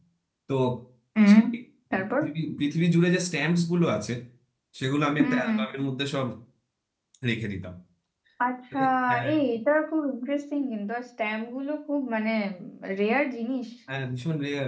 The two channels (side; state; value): both; identical; correlation 1.00